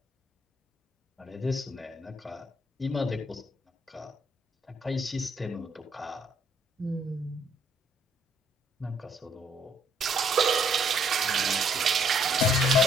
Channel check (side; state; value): both; normal; correlation 0.67